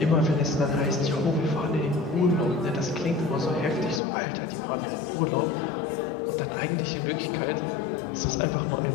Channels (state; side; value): drops out; right; at 4.0 s